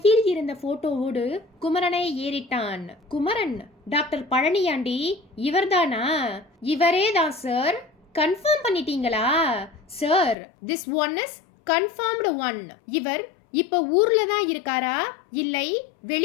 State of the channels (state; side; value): drops out; right; at 10.4 s